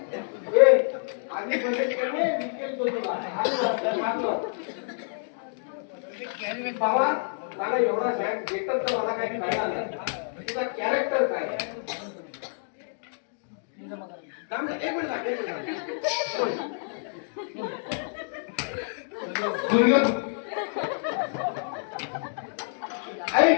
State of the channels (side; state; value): right; silent; digital silence